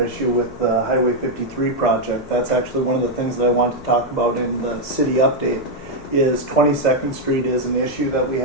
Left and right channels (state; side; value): normal; both; correlation 0.00